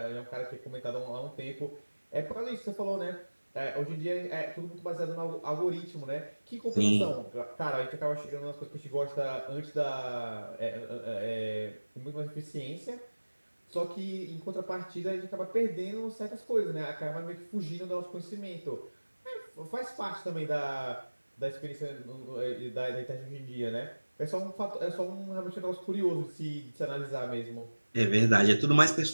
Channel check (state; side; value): inverted; both; correlation -1.00